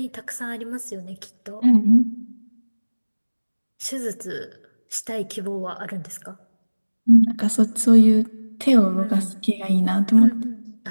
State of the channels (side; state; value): both; inverted; correlation -1.00